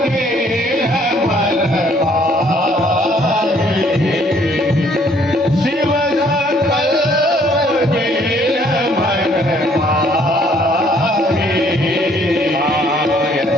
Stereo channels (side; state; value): both; normal; correlation 0.63